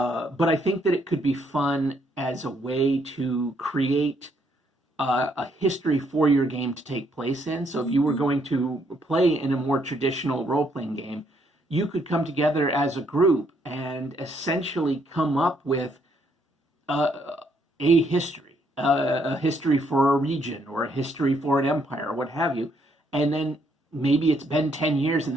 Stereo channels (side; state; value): both; normal; correlation 0.71